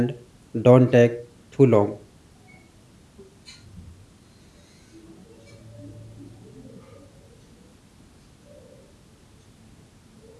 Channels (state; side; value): identical; both; correlation 1.00